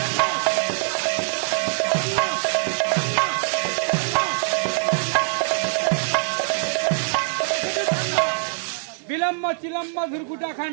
বিলম্ব চিলম্ব ধুরকুটা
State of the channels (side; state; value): left; silent; digital silence